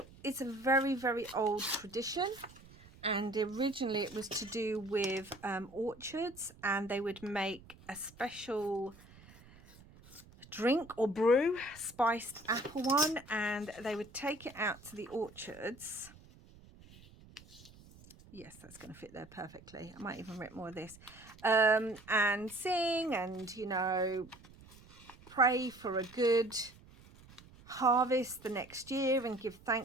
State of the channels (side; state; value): right; noise; rumble, 22 dB below the sound